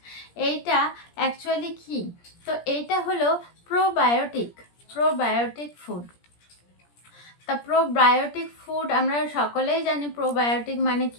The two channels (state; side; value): late; right; 17 ms